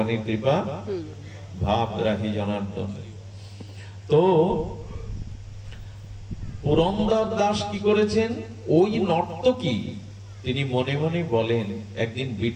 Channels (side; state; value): both; identical; correlation 1.00